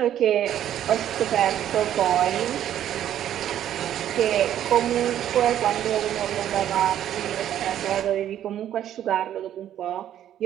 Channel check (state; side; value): quieter; left; 11.1 dB